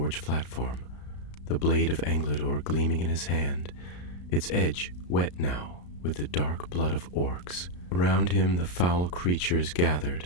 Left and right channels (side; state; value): right; late; 34 ms